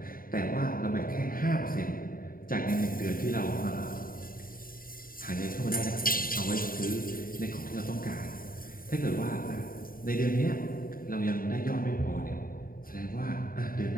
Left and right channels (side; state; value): right; late; 0.41 ms